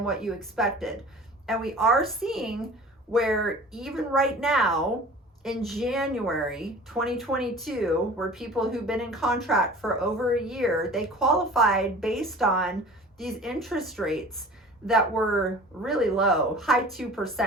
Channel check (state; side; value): normal; both; correlation 0.42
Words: what you expected. And we are seeing where even right now in January 2022, where people who've been in contract for over a year, they qualified based on these interest rates that were really low, high